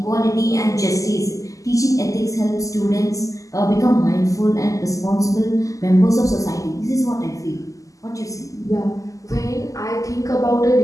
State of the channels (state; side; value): late; right; 0.16 ms